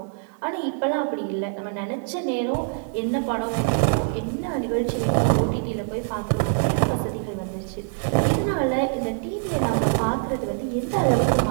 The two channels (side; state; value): left; silent; 62 dB below the other